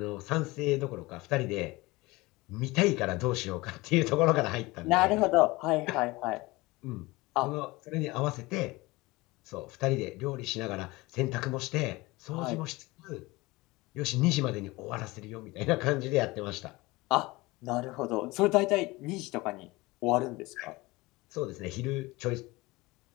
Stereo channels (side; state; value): right; quieter; 21.9 dB